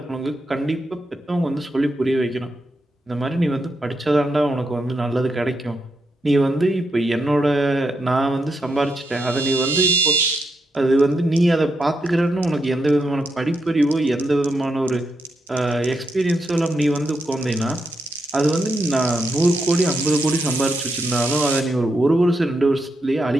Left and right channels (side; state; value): both; normal; correlation 0.82